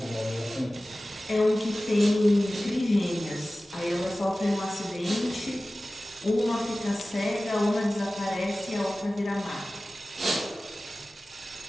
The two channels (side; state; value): both; normal; correlation 0.96